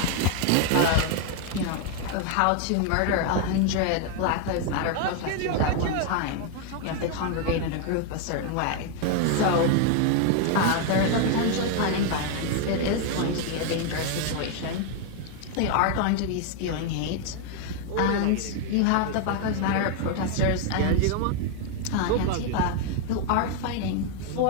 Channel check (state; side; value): different; both; correlation 0.01